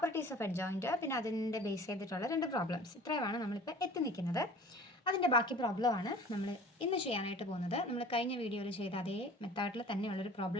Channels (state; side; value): normal; both; correlation 0.44